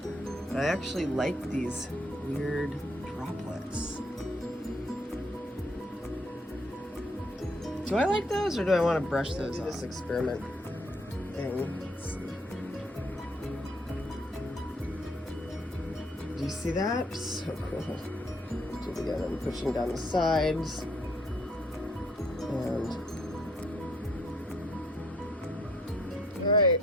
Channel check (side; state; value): both; normal; correlation 0.66